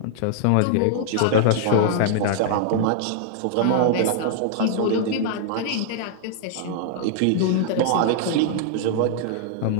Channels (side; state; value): both; different; correlation -0.01